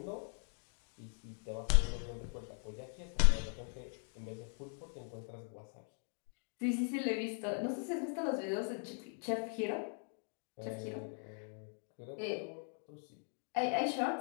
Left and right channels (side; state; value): right; silent; 51 dB below the other